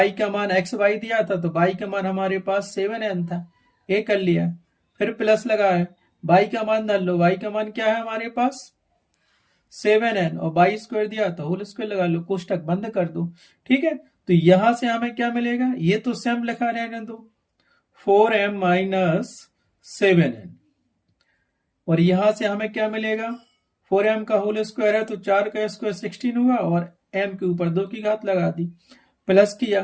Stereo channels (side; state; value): both; identical; correlation 1.00